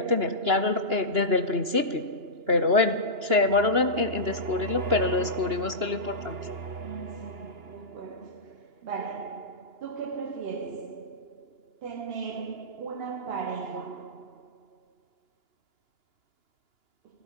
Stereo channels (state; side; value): late; left; 2.9 ms